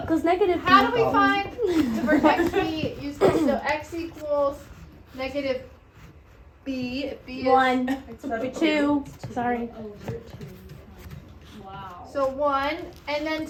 equals negative How b. do we find the vertex b? Use this. So x equals negative b. If b is 1, 2. Sorry. Wow. so 1, and then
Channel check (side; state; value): both; identical; correlation 1.00